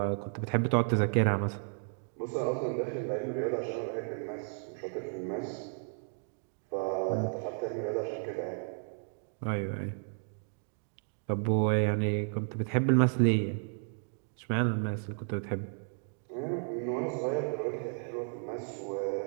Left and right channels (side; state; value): left; silent; 56 dB below the other